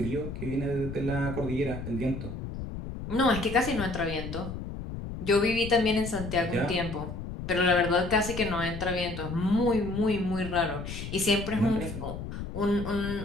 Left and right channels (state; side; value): noise; left; rumble, 8 dB below the sound